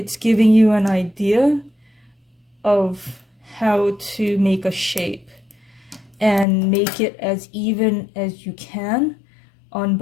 giving you an idea of how to make a shape and make it as even as you can on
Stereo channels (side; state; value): right; drops out; at 6.5 s